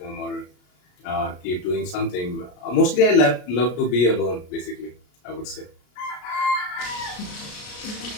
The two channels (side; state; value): right; late; 33 ms